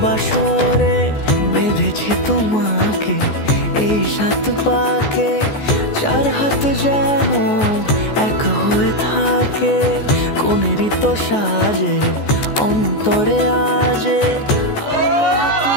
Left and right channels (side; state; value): right; late; 14 ms